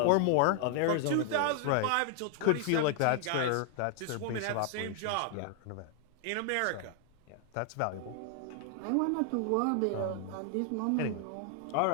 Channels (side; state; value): both; different; correlation 0.00